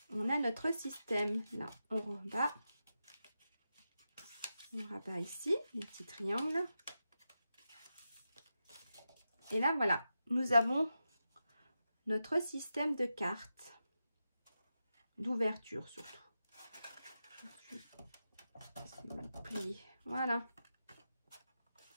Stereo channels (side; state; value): both; inverted; correlation -0.89